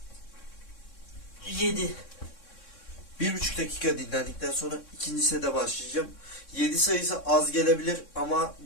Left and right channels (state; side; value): late; right; 3.6 ms